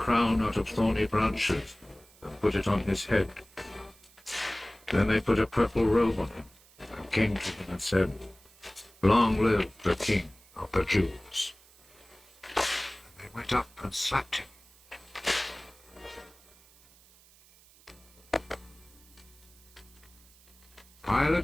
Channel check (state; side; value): noise; right; hiss, 27 dB below the sound